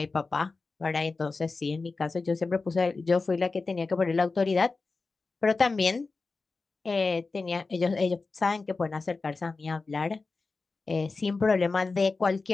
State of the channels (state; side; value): quieter; right; 3.9 dB